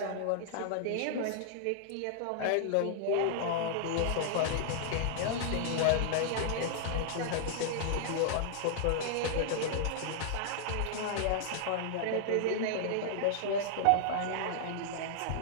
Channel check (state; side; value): different; both; correlation -0.01